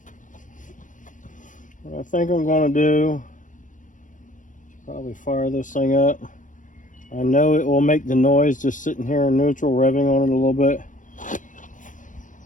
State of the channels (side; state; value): right; late; 0.37 ms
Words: What I think I'm going to do is probably fire this thing up. I know it will make the noise just sitting here in neutral, revving on it a little bit.